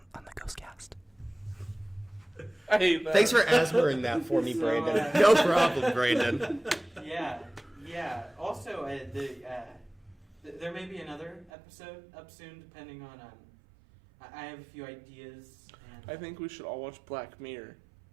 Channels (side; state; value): left; drops out; at 11.5 s